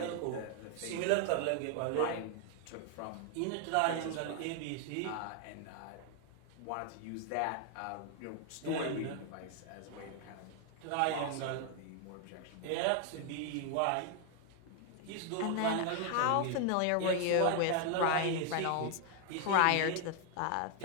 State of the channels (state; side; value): different; both; correlation 0.00